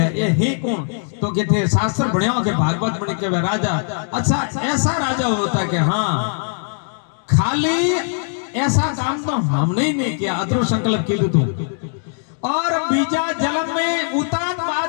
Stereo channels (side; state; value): right; silent; digital silence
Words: ये ही कौन तो कहते शास्त्र भण्यो के भागवत बने के राजा अच्छा ऐसा राजा होता कि हां खाली ऐसा काम तो हमने ही नहीं किया अतरो संकल्प कीधु तू और बीजा जन्म में उतान